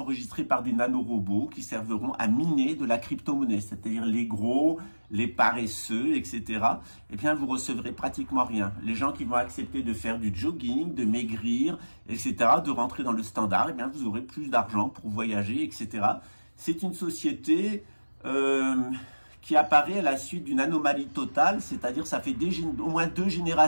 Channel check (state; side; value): inverted; both; correlation -1.00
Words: par des nanorobots qui serviront à miner de la crypto-monnaie, c'est-à-dire les gros, les paresseux, etc. Vous recevrez pratiquement rien. Les gens qui vont accepter de faire du jogging, de maigrir, etc., de rentrer dans le standard, vous aurez plus d'argent pour voyager, etc. C'est une société qui apparaît à la suite d'une anomalie totale, c'est-à-dire ça fait au moins 2